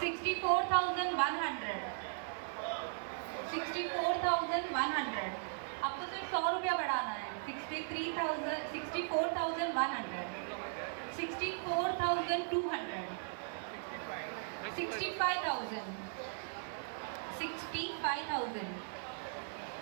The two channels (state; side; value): silent; left; digital silence